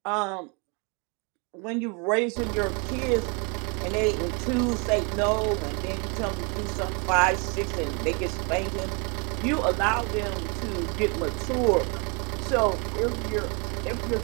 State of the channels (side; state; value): left; quieter; 32.7 dB